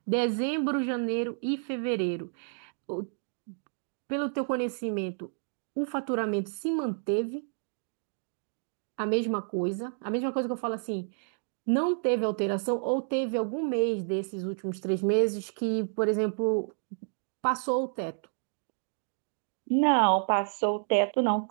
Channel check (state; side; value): silent; left; digital silence